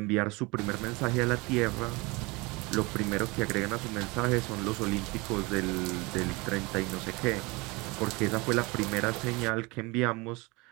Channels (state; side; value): quieter; left; 25.3 dB